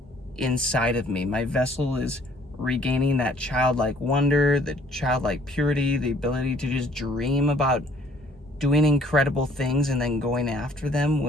inside of me. My vessel is regaining that childlike wonder, the childlike purity, the ability to just dream about doing incredible things and then going after them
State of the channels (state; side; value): normal; both; correlation 0.59